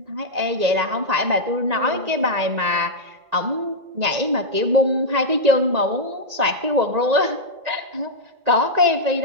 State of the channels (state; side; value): late; left; 1.9 ms